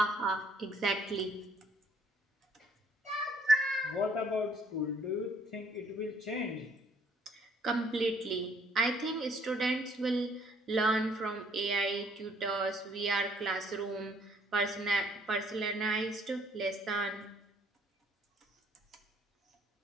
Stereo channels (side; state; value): both; normal; correlation 0.63